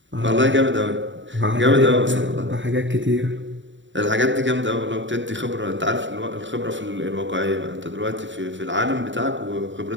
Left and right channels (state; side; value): late; left; 0.54 ms